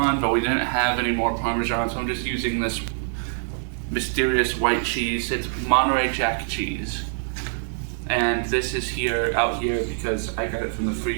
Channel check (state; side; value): silent; left; digital silence